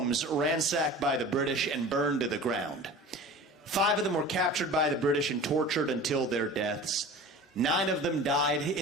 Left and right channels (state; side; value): normal; both; correlation 0.38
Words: ransacked by the British and burned to the ground. 5 of them were captured by the British and tortured until their deaths. 9 of them died